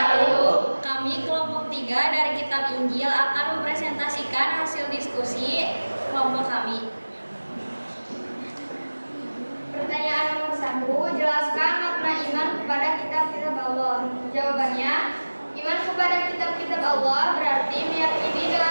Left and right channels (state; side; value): inverted; both; correlation -1.00